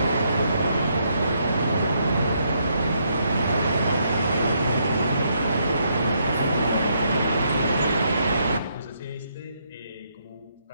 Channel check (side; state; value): both; inverted; correlation -0.75